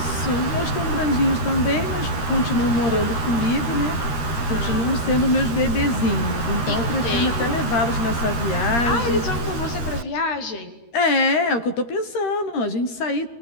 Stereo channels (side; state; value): right; late; 13 ms